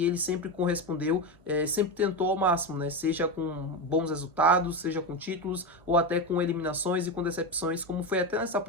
ele sempre correspondeu, sempre tentou ao máximo, né? Seja com bons resultados, seja com títulos, ou até com eliminações e com decepções, como foi até nessa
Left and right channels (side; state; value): both; normal; correlation 0.15